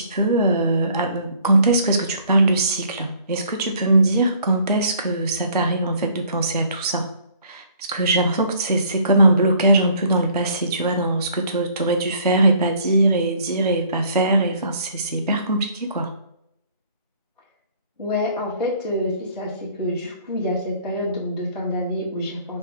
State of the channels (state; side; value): inverted; both; correlation -0.58